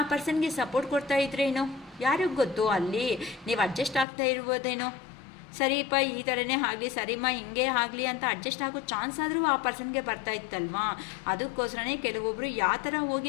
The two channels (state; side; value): drops out; right; at 4.0 s